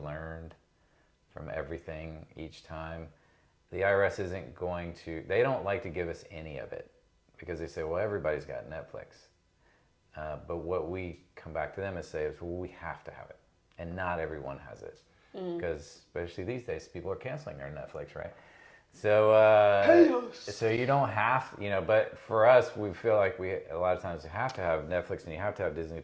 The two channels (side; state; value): both; identical; correlation 1.00